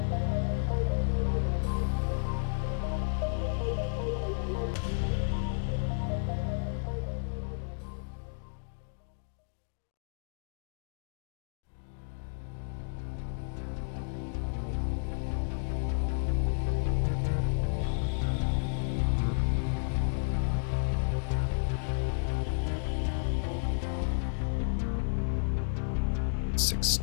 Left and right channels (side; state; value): right; silent; digital silence